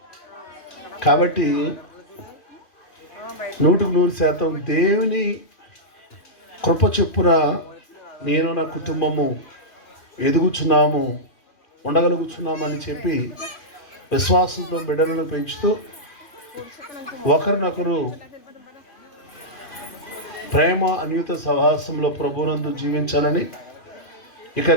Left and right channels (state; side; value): late; right; 2.4 ms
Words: కాబట్టి 100% దేవుని కృప చొప్పున నేను నా కుటుంబము ఎదుగుచున్నాము, ఉండగలుగుతున్నామని చెప్పి విశ్వాసంతో బిడ్డలను పెంచుతూ ఒకరినొకరు ప్రేమ అన్యూత సహవాసంలో ప్రభునందు జీవించాలని ఇక